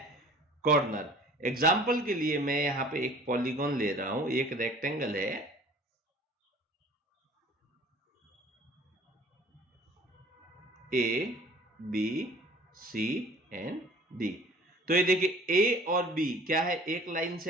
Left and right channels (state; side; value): normal; both; correlation 0.49